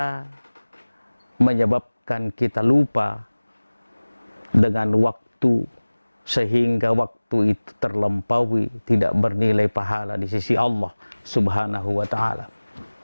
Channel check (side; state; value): both; inverted; correlation -1.00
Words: menyebabkan kita lupa dengan waktu, sehingga waktu itu terlampaui, tidak bernilai pahala di sisi Allah subhanahu wa ta'ala.